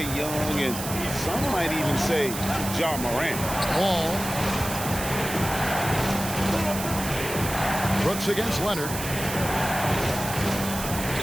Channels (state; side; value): noise; right; hiss, 7 dB below the sound